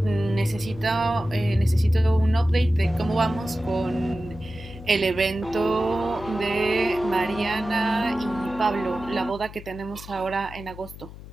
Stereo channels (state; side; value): noise; left; hum, 15 dB below the sound